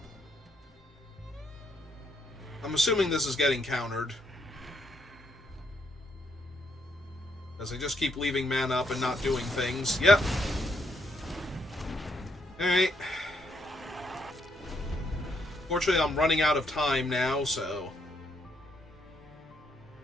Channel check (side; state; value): both; normal; correlation 0.74